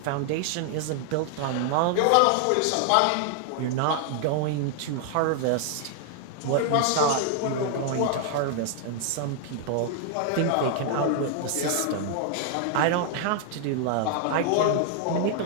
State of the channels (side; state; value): both; different; correlation 0.00